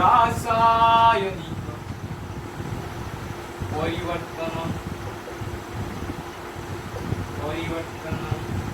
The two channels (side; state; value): both; identical; correlation 1.00